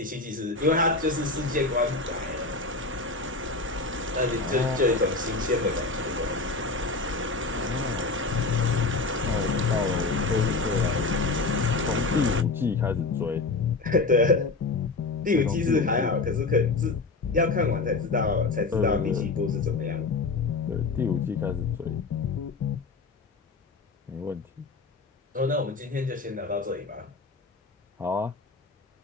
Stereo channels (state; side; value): quieter; right; 3.8 dB